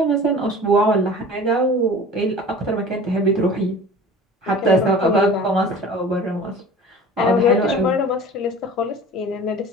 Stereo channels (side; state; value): both; normal; correlation 0.41